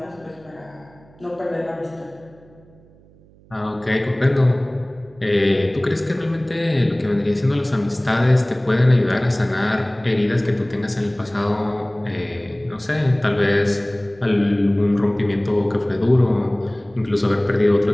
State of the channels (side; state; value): right; noise; hum, 27 dB below the sound